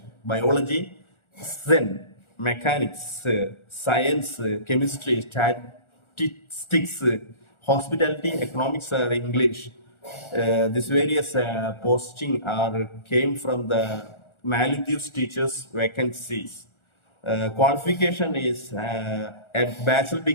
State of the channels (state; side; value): late; right; 1.4 ms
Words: biology, Zen, mechanics, science, chemistry, statistics, hospitality, economics, English. These various posting are came from the Maldives teachers vacancies. Qualification is a bachelor